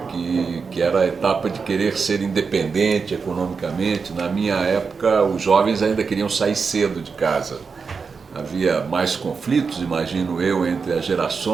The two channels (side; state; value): left; quieter; 5.2 dB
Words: que era a etapa de querer ser independente economicamente. Na minha época, os jovens ainda queriam sair cedo de casa. Havia mais conflitos, imagino eu, entre as